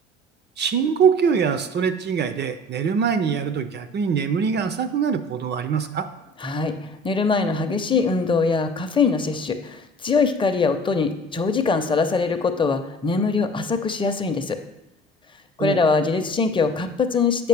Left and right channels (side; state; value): both; normal; correlation 0.45